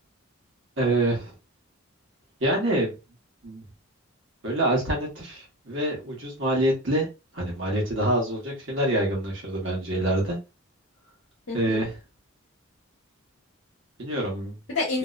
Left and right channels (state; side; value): normal; both; correlation 0.26